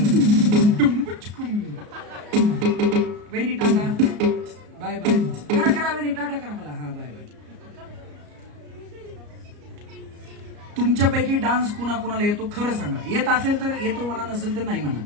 वहिनी टाटा बाय बाय करा वहिनी टाटा करा मला. हा बाय बाय. तुमच्यापैकी डान्स कुणाला येतो खरं सांगा. येत असेल तर येतो म्हणा, नसेल तर नाही म्हणा.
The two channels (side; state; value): left; late; 34 ms